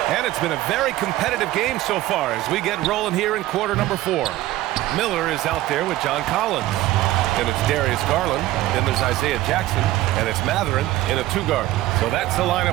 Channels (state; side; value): quieter; left; 16.0 dB